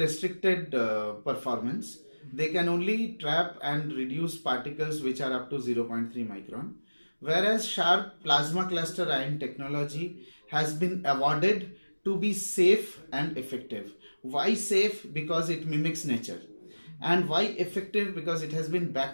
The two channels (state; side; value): inverted; both; correlation -1.00